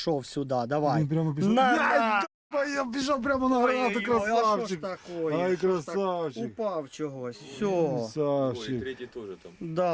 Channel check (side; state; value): both; identical; correlation 1.00